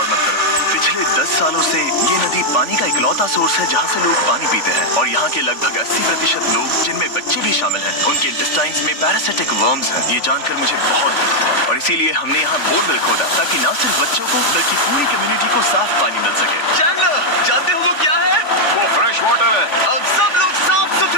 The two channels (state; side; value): late; right; 3.5 ms